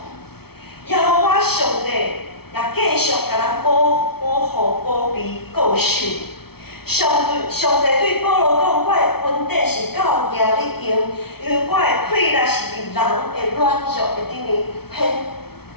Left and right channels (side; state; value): right; late; 0.96 ms